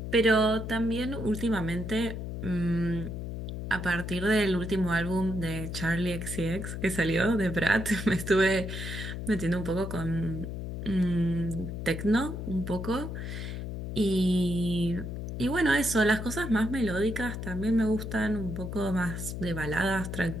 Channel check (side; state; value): left; noise; hum, 6 dB below the sound